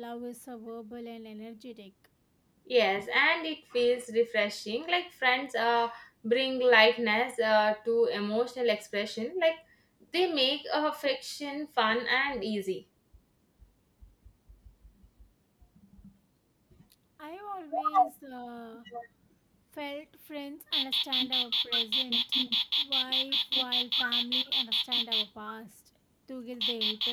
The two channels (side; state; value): both; identical; correlation 1.00